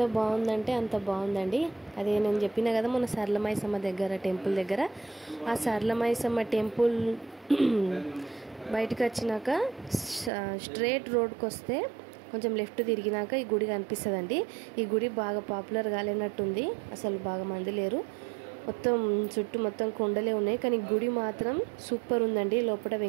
బాగుందంటే అంత బాగుందండి. అదే నేను చెప్పిన కదా మొన్న సరళమైసమ్మ దగ్గర టెంపుల్ దగ్గర, ఆ సరళమైసమ్మ టెంపుల్ బయటకు వచ్చినాక స్ట్రేట్ రోడ్కి వస్తే కొంచెం లెఫ్ట్ తిరిగినాక ఈ గుడి కనిపిస్తుందండి. ఈ గుడి బాగా పాపులర్ కాలేనట్టుంది, అసలు బాగా మంది లేరు. మొత్తం చుట్టూ మొత్తం కొండలే ఉన్నాయి, కానీ గుడి మాత్రం సూపర్ ఉందండి. లోపల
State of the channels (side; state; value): left; drops out; at 10.3 s